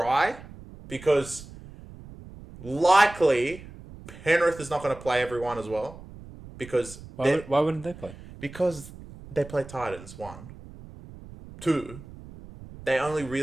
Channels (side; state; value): right; noise; rumble, 17 dB below the sound